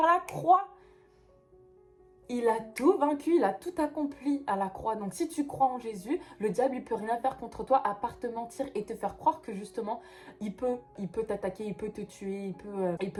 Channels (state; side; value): identical; both; correlation 1.00